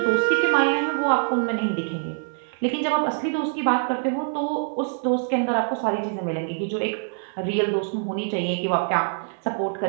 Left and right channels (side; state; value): left; silent; digital silence